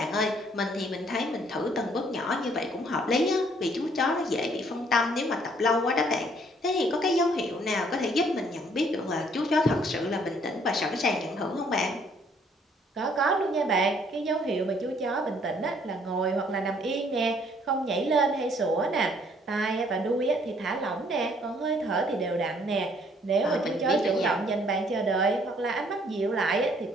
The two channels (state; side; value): normal; both; correlation 0.63